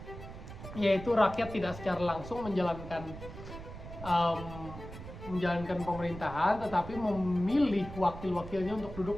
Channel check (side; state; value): right; noise; rumble, 12 dB below the sound